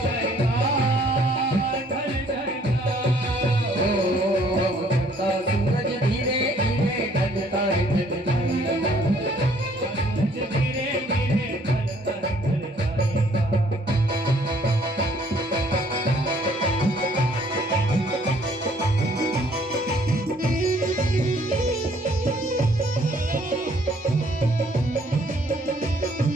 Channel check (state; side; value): normal; both; correlation 0.61